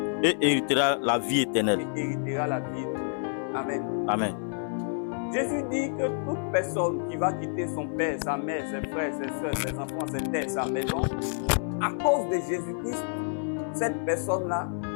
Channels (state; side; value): silent; right; 59 dB below the other